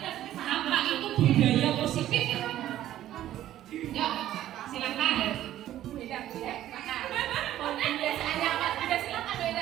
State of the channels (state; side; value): quieter; left; 12.9 dB